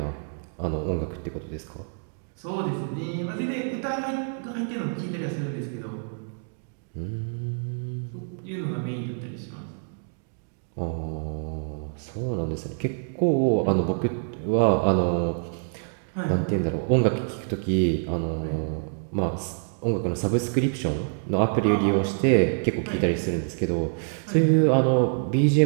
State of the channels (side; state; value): left; silent; 61 dB below the other